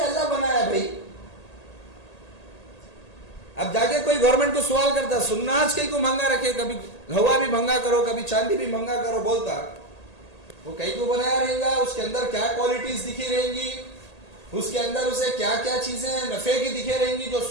بنایا بھائی. اب جا کے کوئی گورنمنٹ کو سوال کرتا, سناج کہیں کو مہنگا رکھے, کبھی ہوا بھی مہنگا کرو, کبھی چاندی بھی مہنگا کرو, بولتا وہ کہیں کو بنایا رہے گا, اس کے اندر کیا کوالٹیز دکھی رہیں گی, اس کے اندر اسے کیا کیا چیزیں نفع کی دکھے رہیں گی, جو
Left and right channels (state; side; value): late; right; 1.8 ms